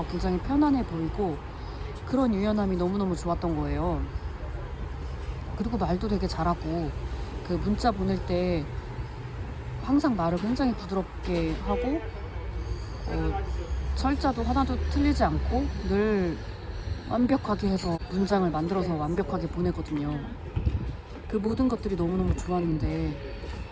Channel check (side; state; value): both; identical; correlation 1.00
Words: 굉장히 편안해 보이고 그런 유연함이 너무너무 좋았던 거예요. 그리고 말도 되게 잘하고 그 문자 보낼 때 항상 말을 굉장히 부드럽게 하고 철자도 하나도 틀리지 않고 늘 완벽하게 해서 문장을 만들어서 완벽하게 보내거든요. 그 모든 것들이 너무너무 좋았는데